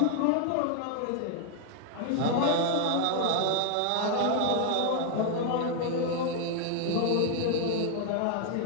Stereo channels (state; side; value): different; both; correlation 0.00